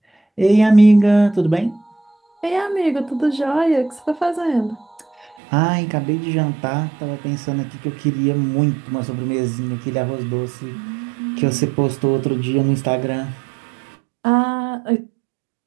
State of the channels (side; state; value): left; drops out; at 5.4 s